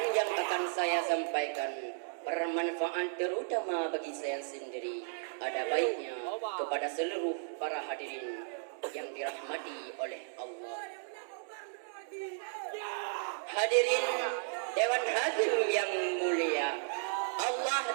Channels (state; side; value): silent; left; digital silence